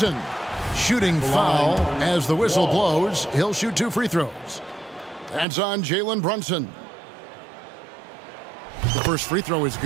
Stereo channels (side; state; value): left; drops out; at 5.5 s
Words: Shooting foul as the whistle blows. He'll shoot 2 free throws. That's on Jalen Brunson. The first free throw is